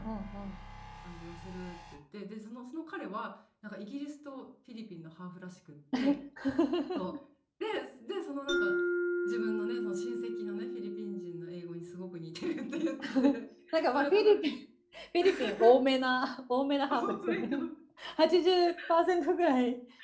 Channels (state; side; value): identical; both; correlation 1.00